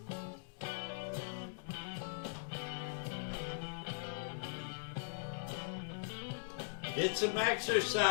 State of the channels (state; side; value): silent; right; digital silence